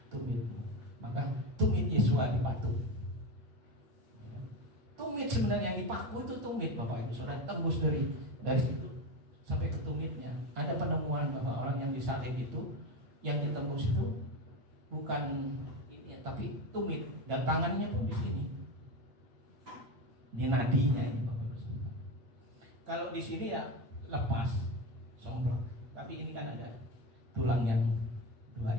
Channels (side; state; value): left; late; 8.8 ms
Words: tumitmu. Maka tumit Yesua dipatuk. Tumit sebenarnya yang dipaku itu tumit, Bapak Ibu Saudara, tembus dari situ sampai ke tumitnya. Ada penemuan bahwa orang yang disalib itu, yang ditembus itu bukan ini, tapi tumit, dan tangannya pun di sini, di nadinya ini, Bapak Ibu Saudara. Kalau di sini ya lepas, somplak, tapi ini kan ada tulang yang dua